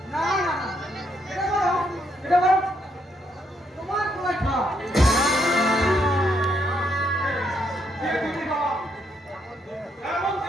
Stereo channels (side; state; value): both; normal; correlation 0.75